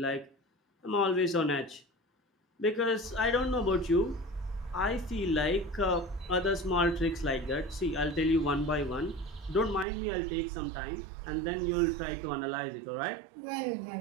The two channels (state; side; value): drops out; left; at 9.9 s